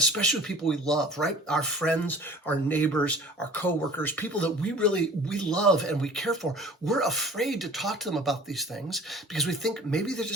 with people we love, right? Our friends, our neighbors, our coworkers, people that we love and we care for. We're afraid to talk to them about these things because we think maybe they're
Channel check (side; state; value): both; normal; correlation 0.45